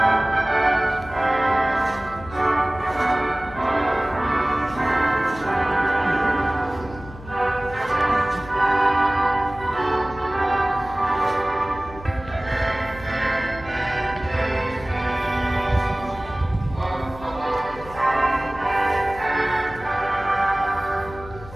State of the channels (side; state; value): left; noise; hum, 16 dB below the sound